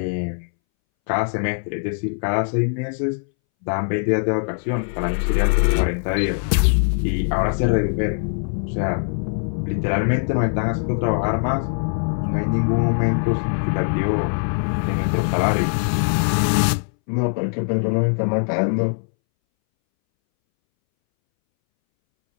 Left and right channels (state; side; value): silent; right; 63 dB below the other